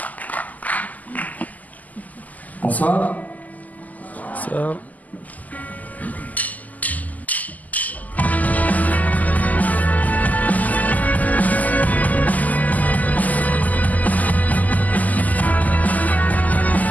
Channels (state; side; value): late; right; 0.079 ms